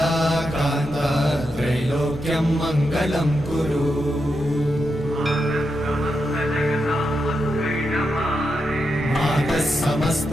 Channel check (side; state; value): both; normal; correlation 0.86